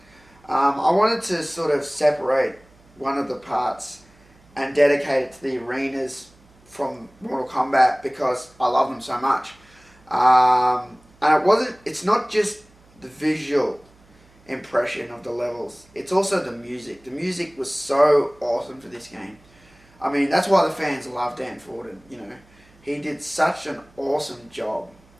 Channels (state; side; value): noise; right; hum, 29 dB below the sound